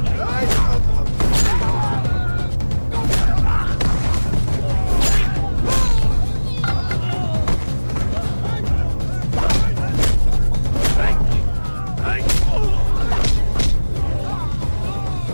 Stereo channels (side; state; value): both; inverted; correlation -1.00